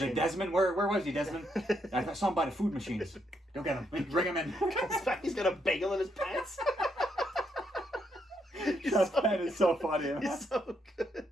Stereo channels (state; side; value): normal; both; correlation 0.76